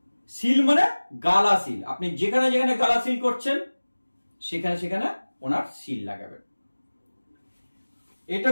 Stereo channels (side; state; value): both; inverted; correlation -1.00